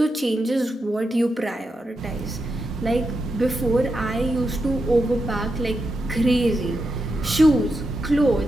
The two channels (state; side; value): normal; both; correlation 0.86